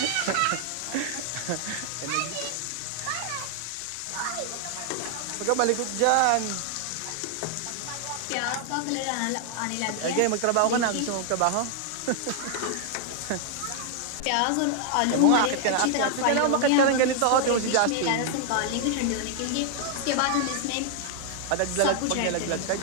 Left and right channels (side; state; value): both; different; correlation 0.00